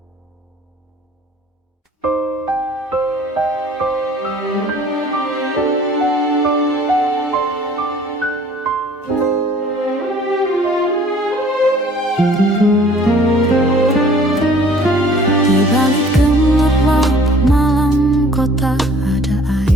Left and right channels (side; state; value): both; normal; correlation 0.53